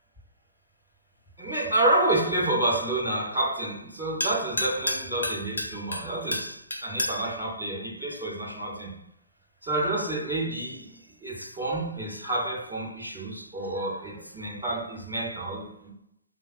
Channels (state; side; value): inverted; both; correlation -0.46